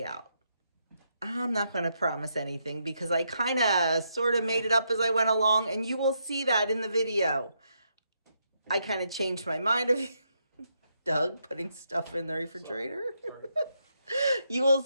out. I'm not going to promise anything because I kind of sort of made it up as I went along, and you will see that in the video. I kind of changed my mind of Doug putting stuff in the refrigerator. You will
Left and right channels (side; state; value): both; inverted; correlation -0.79